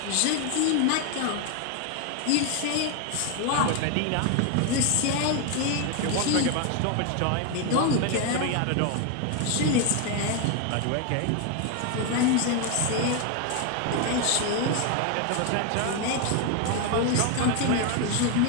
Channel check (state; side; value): different; both; correlation 0.01